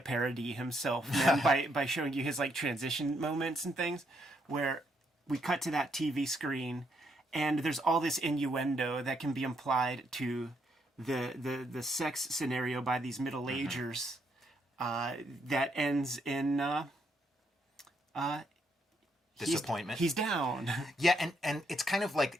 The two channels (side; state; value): both; normal; correlation 0.75